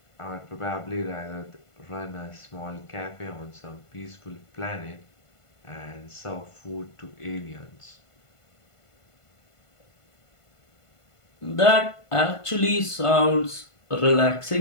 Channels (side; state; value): right; late; 1.5 ms